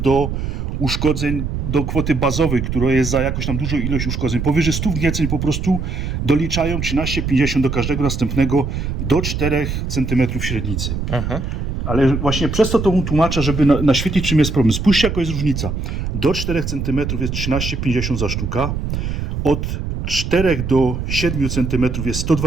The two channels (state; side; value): noise; right; rumble, 3 dB below the sound